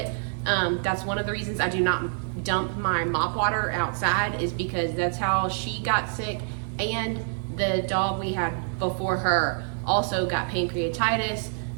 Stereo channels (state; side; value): silent; left; digital silence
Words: That's one of the reasons I do not dump my mop water outside, is because that's how she got sick. And the dog we had before her also got pancreatitis